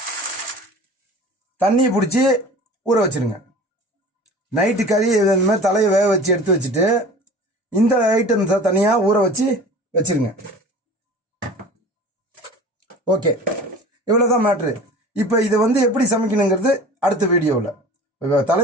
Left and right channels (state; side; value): normal; both; correlation 0.40